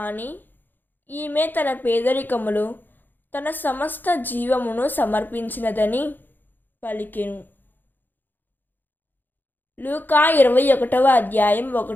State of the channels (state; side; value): late; right; 0.089 ms